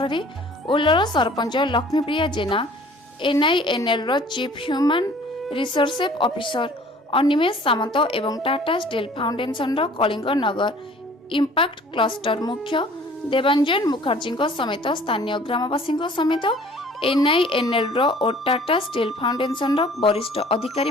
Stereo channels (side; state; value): both; normal; correlation 0.51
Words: रे ओल्लल sarpanch Laxmipriya Jena, NINL chief human resource officer Animesh Samant एवं Tata steel foundation Kalinga Nagar impact cluster मुख्य देवांजन मुखर्जी समेत स्थानीय ग्रामवासी समेत NINL और टाटा स्टील फाउंडेशन वरिष्ठ अधिकारी